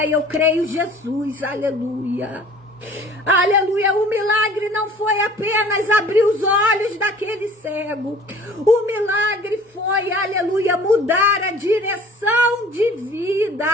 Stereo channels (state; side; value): normal; both; correlation 0.50